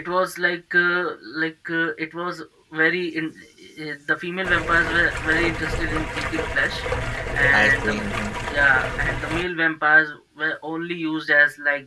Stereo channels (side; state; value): both; identical; correlation 1.00